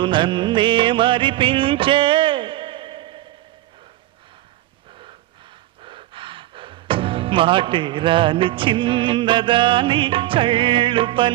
నన్నే మరిపించే, మాటే రాని చిన్నదాని కళ్ళు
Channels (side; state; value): left; quieter; 15.8 dB